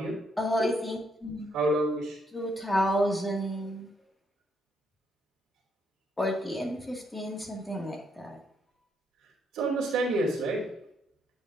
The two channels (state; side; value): normal; both; correlation 0.74